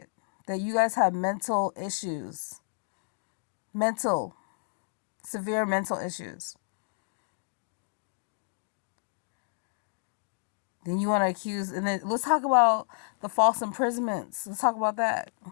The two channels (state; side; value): silent; right; digital silence